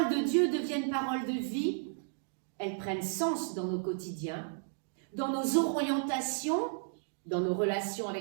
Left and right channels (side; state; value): left; silent; digital silence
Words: de Dieu deviennent paroles de vie, elles prennent sens dans nos quotidiens, dans nos orientations, dans nos relations